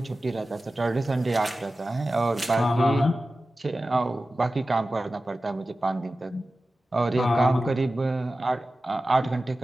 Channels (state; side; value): normal; both; correlation 0.95